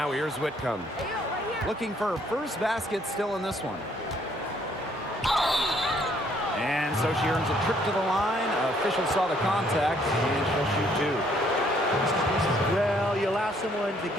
here's Whitcomb. Looking for her first basket still in this one. And so she earns a trip to the line. Officials saw the contact, and she'll shoot 2. Well, you allow someone to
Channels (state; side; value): normal; both; correlation 0.66